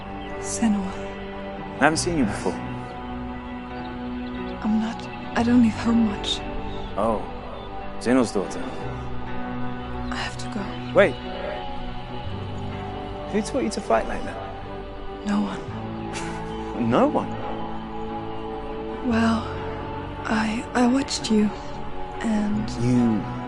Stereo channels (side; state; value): both; identical; correlation 1.00